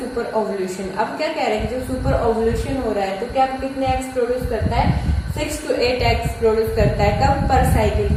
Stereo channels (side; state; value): both; identical; correlation 1.00